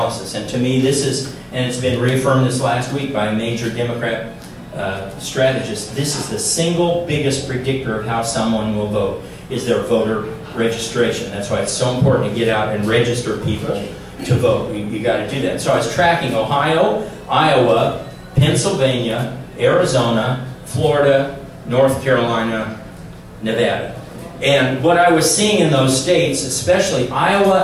And to me, this is, and it's been reaffirmed this last week by a major Democrat strategist, this is the single biggest predictor of how someone will vote, is their voter registration. That's why it's so important to get out and register people to vote. You got to do that. So I was tracking Ohio, Iowa, Pennsylvania, Arizona, Florida, North Carolina, Nevada. And what I was seeing in those states, especially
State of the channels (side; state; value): both; identical; correlation 1.00